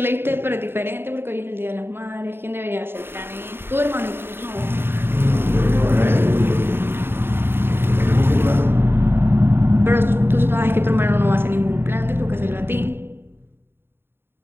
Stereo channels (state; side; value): late; left; 0.11 ms